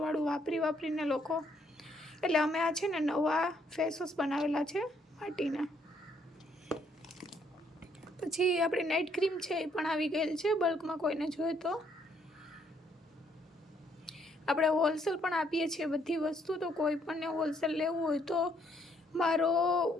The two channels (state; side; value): normal; both; correlation 0.69